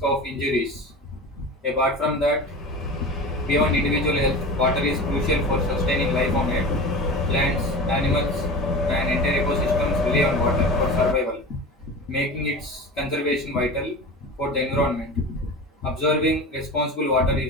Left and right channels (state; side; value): normal; both; correlation 0.31